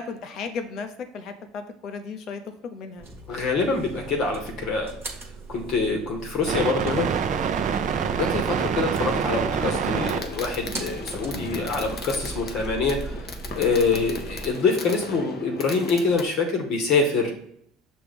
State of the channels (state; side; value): normal; both; correlation 0.33